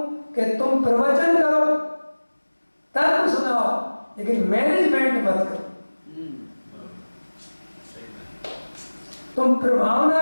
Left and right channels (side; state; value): both; inverted; correlation -1.00